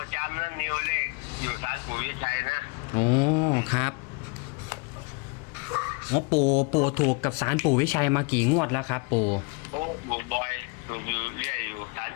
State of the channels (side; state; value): right; quieter; 31.3 dB